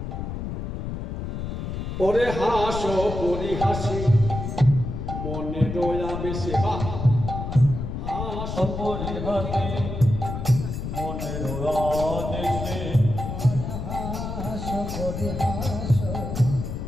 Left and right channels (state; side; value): noise; left; rumble, 5 dB below the sound